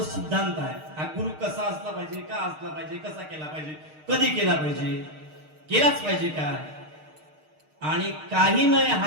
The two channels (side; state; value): left; late; 6.5 ms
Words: सिद्धांत आहे, हा गुरु कसा असला पाहिजे, का असला पाहिजे, कसा केला पाहिजे, कधी केला पाहिजे, केलाच पाहिजे का, आणि काही नाही